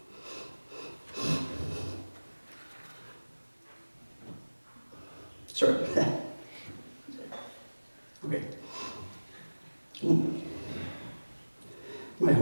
Sorry. Okay. My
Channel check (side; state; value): both; inverted; correlation -1.00